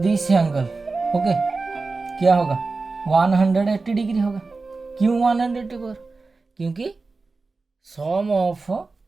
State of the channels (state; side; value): quieter; left; 3.9 dB